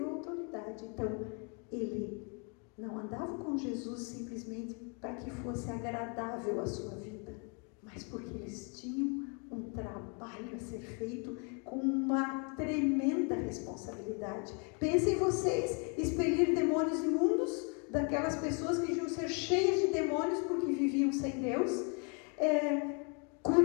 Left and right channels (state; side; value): quieter; right; 36.6 dB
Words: autoridade. Então, ele não andava com Jesus simplesmente para que fosse agradável a sua vida, mas porque eles tinham um trabalho a ser feito com uma tremenda responsabilidade. Pensem vocês, expelir demônios imundos daquelas pessoas que deviam ser cheias de demônios porque viviam sem Deus,